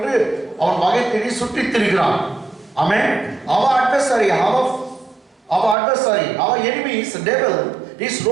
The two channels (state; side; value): drops out; left; at 5.8 s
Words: அவன் வகை தேடி சுற்றித் திரிகிறான். ஆமென். Our adversary, our enemy is the devil. He is